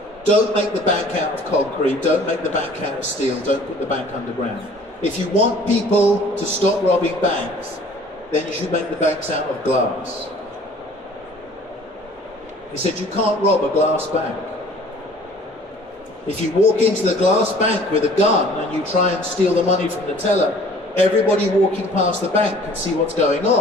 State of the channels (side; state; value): both; normal; correlation 0.51